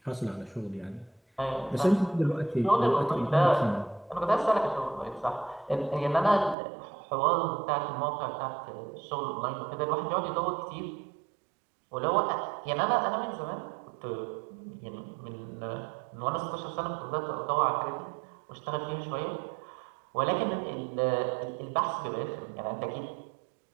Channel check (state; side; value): drops out; left; at 6.6 s